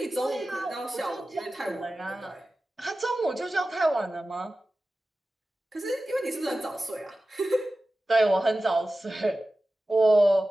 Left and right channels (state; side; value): normal; both; correlation 0.95